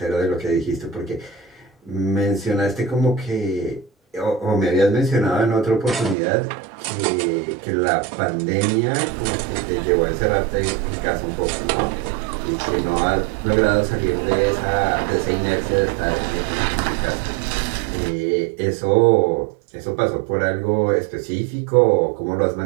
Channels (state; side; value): drops out; left; at 6.2 s